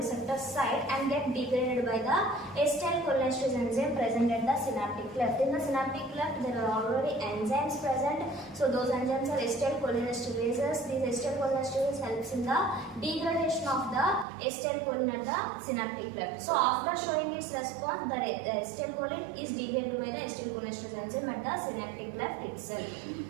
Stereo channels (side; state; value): left; drops out; at 14.2 s